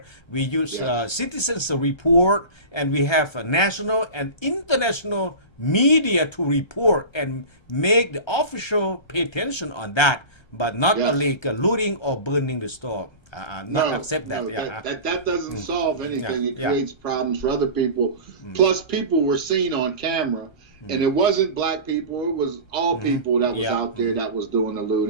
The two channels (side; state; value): right; late; 1.3 ms